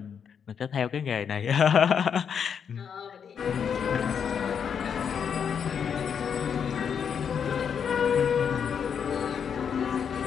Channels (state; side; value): quieter; right; 7.3 dB